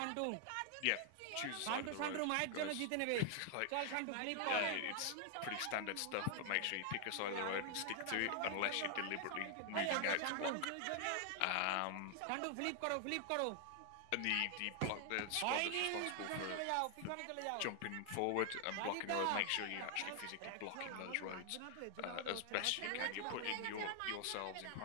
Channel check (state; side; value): different; both; correlation 0.00